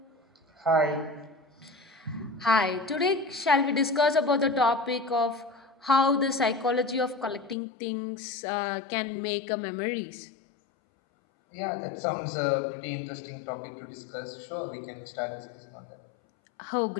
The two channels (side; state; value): right; drops out; at 7.6 s